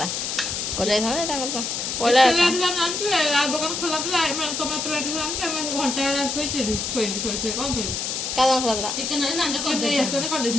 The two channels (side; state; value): left; noise; hiss, 2 dB below the sound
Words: करि जाईथांदा तांकर पहिला ଦୋକାନ ଖୋଲା ଥିଲା ଟମାଟୋ ଲାଠି ଘଣ୍ଟା ଶୋଇଥିଲି ଶୋଇ କ'ଣ କରିବି କାଦନ ଖରାଥିଲା ଚିକେନ ରେ ନାଞ୍ଜ ଚିକେନ ନେଇ ଆସିଛନ୍ତି